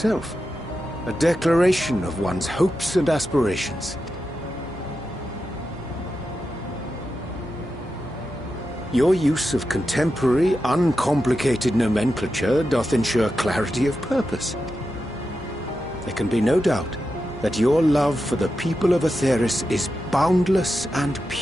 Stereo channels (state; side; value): normal; both; correlation 0.89